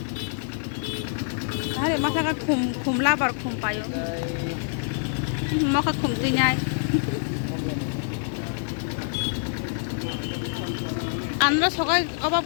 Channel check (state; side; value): silent; right; 58 dB below the other